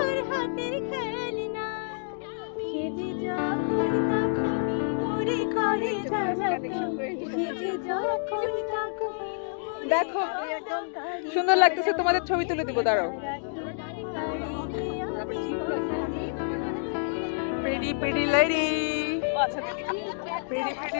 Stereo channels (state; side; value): silent; right; digital silence